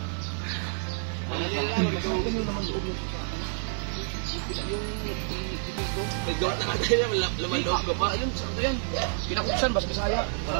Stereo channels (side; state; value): left; silent; digital silence